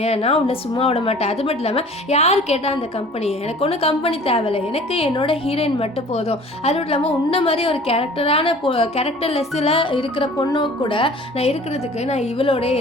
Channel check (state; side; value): normal; both; correlation 0.47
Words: நான் உன்னை சும்மா விட மாட்டேன். அது மட்டும் இல்லாமல் யார் கேட்டால் அந்த கம்பெனி, எனக்கு ஒன்றும் கம்பெனி தேவையில்லை, எனக்கு என்னோட ஹீரோயின் மட்டும் போதும். அது மட்டும் இல்லாமல் உன்ன மாதிரி ஒரு கேரக்டர்லெஸ்ஸில் இருக்கிற பொண்ணு கூட நான் இருக்கிறதுக்கு நான் இவளோட